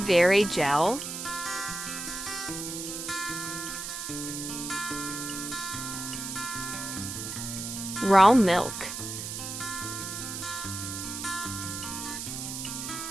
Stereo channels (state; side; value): noise; right; hiss, 6 dB below the sound